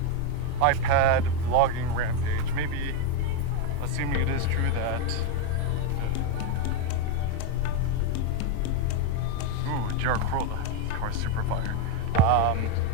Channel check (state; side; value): different; both; correlation 0.02